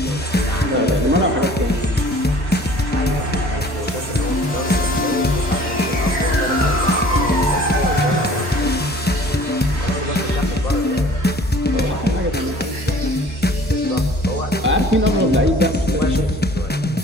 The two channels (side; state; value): both; normal; correlation 0.50